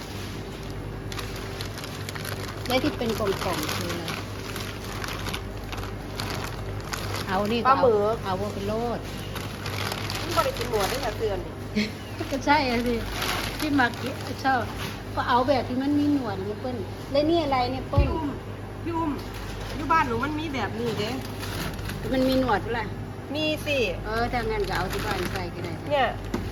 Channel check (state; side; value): identical; both; correlation 1.00